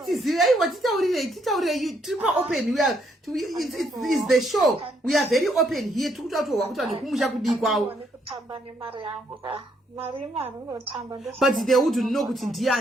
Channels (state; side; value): normal; both; correlation 0.72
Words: tizive titaurire tripa open. We are it's the show. We are very open here. Tikutaura kuti vanhu vekumusha kudi kwawo. But they would know kuti